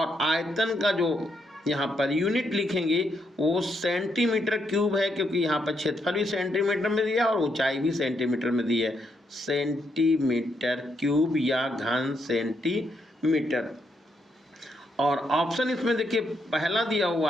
आयतन का जो यहाँ पर यूनिट लिखेंगे वो सेंटीमीटर क्यूब है, क्योंकि यहाँ पर क्षेत्रफल भी सेंटीमीटर में दिया और ऊंचाई भी सेंटीमीटर में दी है। सेंटीमीटर क्यूब या घन सेंटीमीटर। और ऑप्शन इसमें देखिए पहला दिया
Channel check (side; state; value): both; normal; correlation 0.78